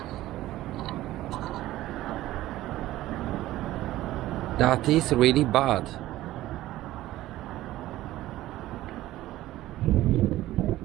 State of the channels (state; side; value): quieter; left; 15.5 dB